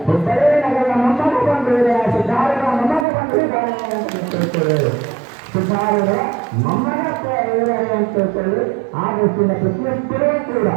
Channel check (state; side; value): drops out; left; at 3.1 s